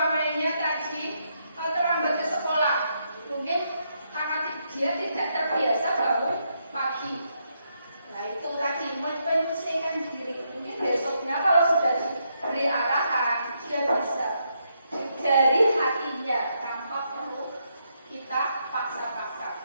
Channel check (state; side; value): inverted; both; correlation -0.78